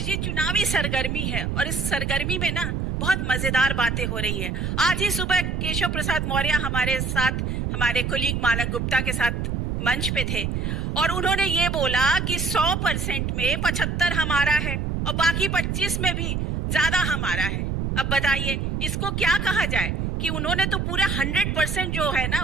जी, चुनावी सरगर्मी है और इस सरगर्मी में ना बहुत मजेदार बातें हो रही हैं। आज ही सुबह केशव प्रसाद मौर्य हमारे साथ, हमारे कोलीग मानक गुप्ता के साथ मंच पे थे और उन्होंने ये बोला कि 100% में 75 हमारा है और बाकी 25 में भी ज्यादा हमारा है। अब बताइए इसको क्या कहा जाए कि उन्होंने तो पूरा 100% जो है ना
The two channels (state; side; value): noise; right; rumble, 1 dB below the sound